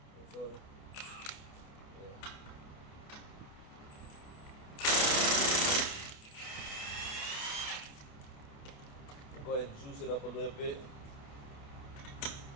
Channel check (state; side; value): late; right; 28 ms